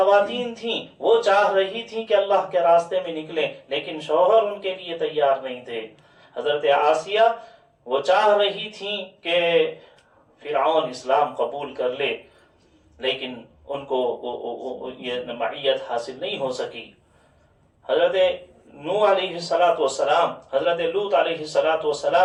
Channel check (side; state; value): both; identical; correlation 1.00